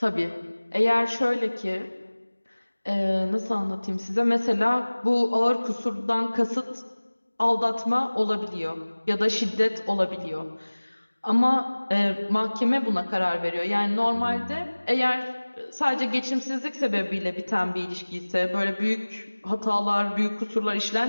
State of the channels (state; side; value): inverted; both; correlation -1.00